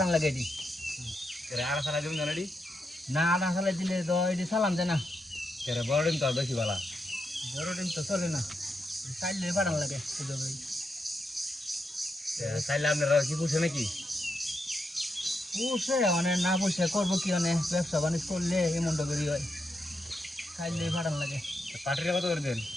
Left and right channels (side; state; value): both; normal; correlation 0.83